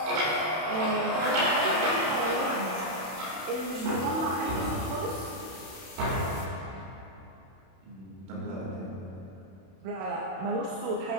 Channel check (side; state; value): left; late; 31 ms